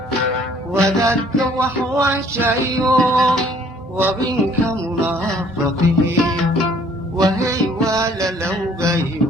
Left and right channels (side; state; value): both; normal; correlation 0.58